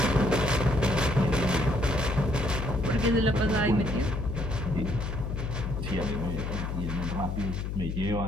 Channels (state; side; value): noise; left; hum, 3 dB below the sound